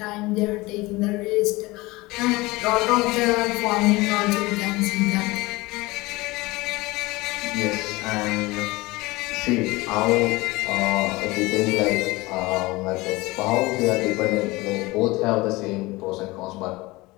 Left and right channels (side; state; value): right; quieter; 21.7 dB